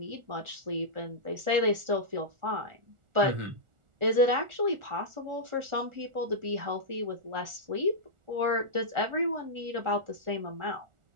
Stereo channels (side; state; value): left; late; 1.4 ms